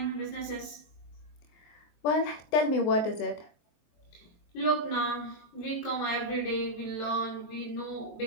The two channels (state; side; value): late; right; 22 ms